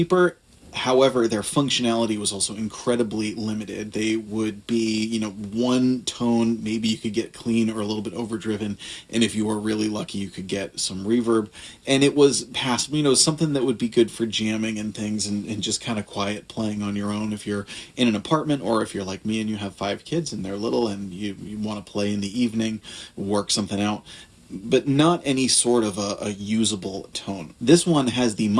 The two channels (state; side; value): identical; both; correlation 1.00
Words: However, their functionality was also incredibly limited. They would be, one tone, maybe you could get clean or a little bit overdriven, and if you were really lucky, you could get some reverb. And it was passable, something that would be good for jamming and things and just kind of quiet playing on your own if you're in an apartment, or if you're like me and you have 5 kids and they're little and you want to play in the evening, work something out, but not any sort of a usable tone. This one has the